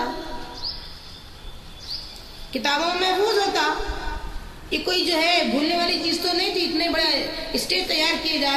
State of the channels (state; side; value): identical; both; correlation 1.00